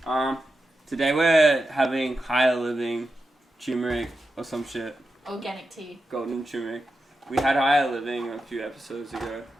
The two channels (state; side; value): normal; both; correlation 0.89